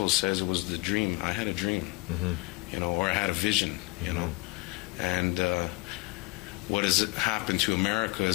says it was the dream. I had a dream, you know, or I had a vision, you know. And what has happened to America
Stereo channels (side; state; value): right; quieter; 24.4 dB